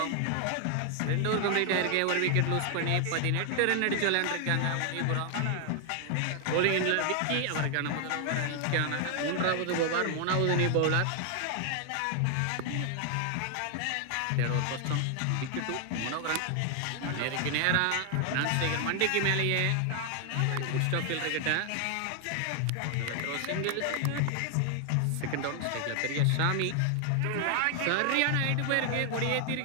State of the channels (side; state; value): both; different; correlation 0.00